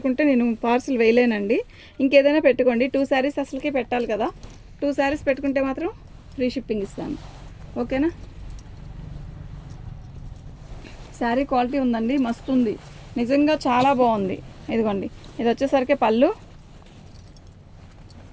నేను పార్సిల్ వేయలేనండి. ఇంకేదైనా పెట్టుకోండి. 2 శారీస్ అసలుకి పెట్టాలి కదా. 2 శారీస్ పెట్టుకుంటే మాత్రం ఫ్రీ షిప్పింగ్ ఇస్తాను. ఓకేనా? శారీ క్వాలిటీ ఉందండి, మస్తు ఉంది నిజంగా, చాలా బాగుంది. ఇదిగోండి, ఇది వచ్చేసరికి పళ్ళు,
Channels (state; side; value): identical; both; correlation 1.00